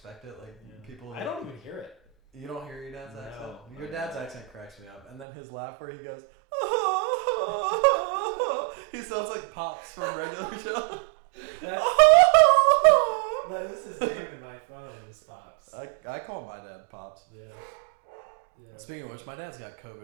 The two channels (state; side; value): drops out; left; at 5.2 s